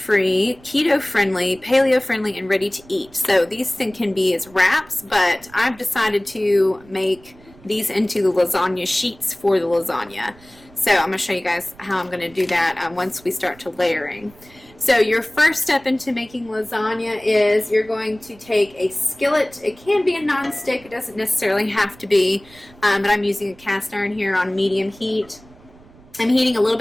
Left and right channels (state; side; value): noise; right; rumble, 25 dB below the sound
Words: keto-friendly, paleo-friendly, and ready to eat. So these things can be as wraps, but I've decided to make these into the lasagna sheets for the lasagna. So I'm going to show you guys how I'm going to do that once we start to layering. So your first step into making lasagna is you're going to take a skillet. It can be a non-stick. It doesn't necessarily have to be, but I'm using a cast iron here on medium heat. I'm heating a little